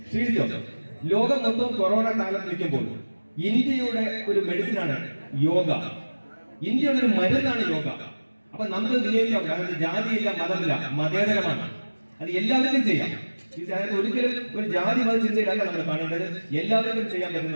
ശ്രീജിതോ, ലോകം മൊത്തം കൊറോണ കാലത്ത് നിൽക്കുമ്പോൾ ഇന്ത്യയുടെ ഒരു മെഡിസിനാണ് യോഗ. ഇന്ത്യയുടെ ഒരു മരുന്നാണ് യോഗ. അപ്പൊ നമുക്ക് വിനിയോഗിക്കാം. കാരണം ജാതിയില്ല, മതമില്ല, മതേതരമാണ്. അത് എല്ലാവർക്കും ചെയ്യാം. ഒരിക്കലും ഒരു ജാതി മത ചിന്തയിലല്ല നമ്മൾ കാണേണ്ടത്, എല്ലാവർക്കും ചെയ്യാൻ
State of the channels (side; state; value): both; inverted; correlation -1.00